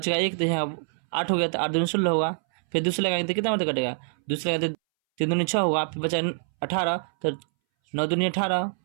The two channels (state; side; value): silent; left; 61 dB below the other